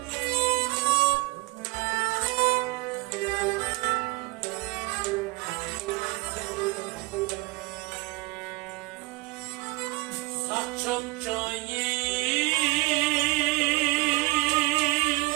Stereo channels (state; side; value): quieter; left; 24.0 dB